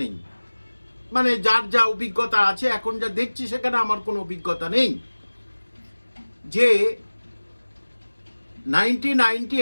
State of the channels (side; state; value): both; inverted; correlation -1.00